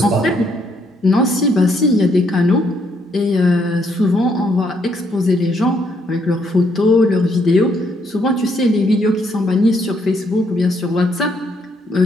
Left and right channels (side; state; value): both; normal; correlation 0.72